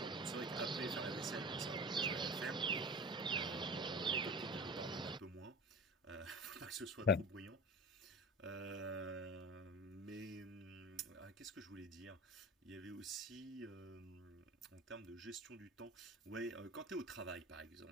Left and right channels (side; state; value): both; normal; correlation 0.33